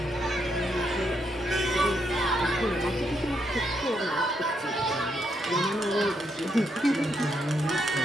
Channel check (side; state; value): both; normal; correlation 0.78